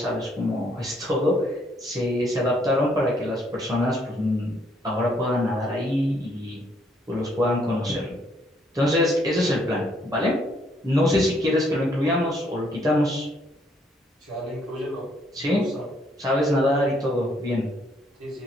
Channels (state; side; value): normal; both; correlation 0.69